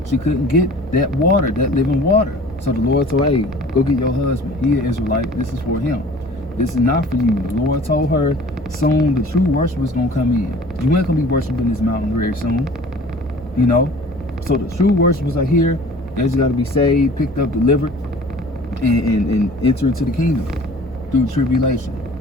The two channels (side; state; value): both; normal; correlation 0.46